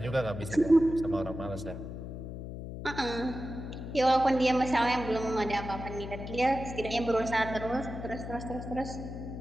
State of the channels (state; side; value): noise; left; hum, 8 dB below the sound